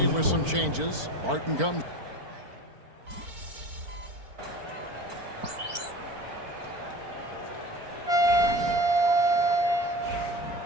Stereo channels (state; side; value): late; left; 4.5 ms